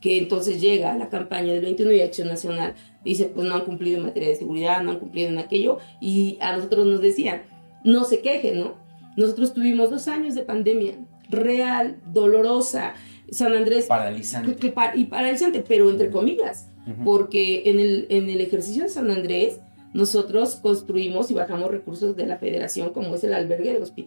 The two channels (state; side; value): inverted; both; correlation -1.00